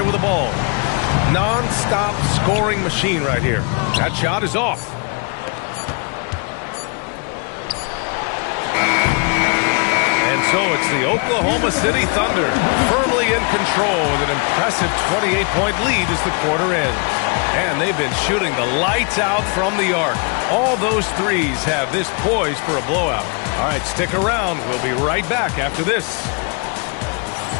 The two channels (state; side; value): quieter; right; 35.6 dB